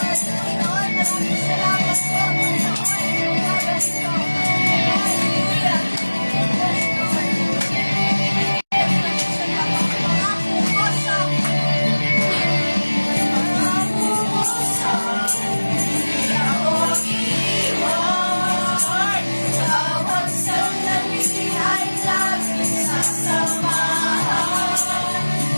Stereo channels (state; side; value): inverted; both; correlation -1.00